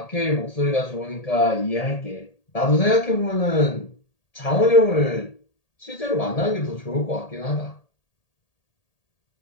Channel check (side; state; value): right; late; 1.8 ms